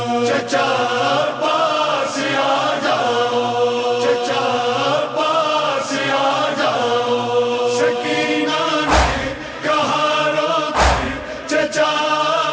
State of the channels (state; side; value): identical; both; correlation 1.00